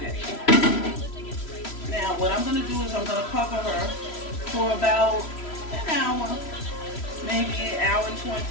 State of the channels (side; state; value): right; late; 3.0 ms